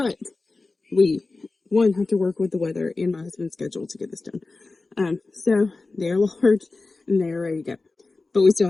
we have to work with the weather and my husband's schedule to get this done. So they're large and they're ready to go, but we still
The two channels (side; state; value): right; quieter; 3.5 dB